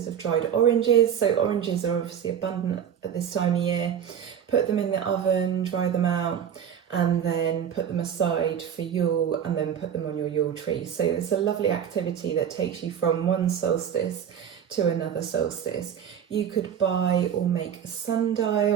of dried oranges. So oranges are obviously abundant at this time of year. Put them in the oven, dry them out, and then put them aside for Yule, and then put them on your Yule tree. So it's a lovely activity that takes you from one solstice to another solstice. You could buy or make a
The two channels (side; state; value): left; quieter; 8.7 dB